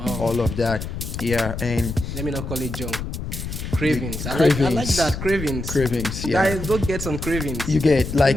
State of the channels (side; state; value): left; noise; rumble, 6 dB below the sound